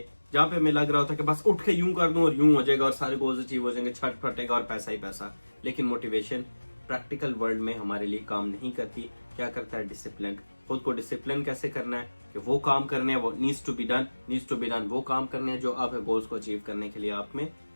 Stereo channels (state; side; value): inverted; both; correlation -1.00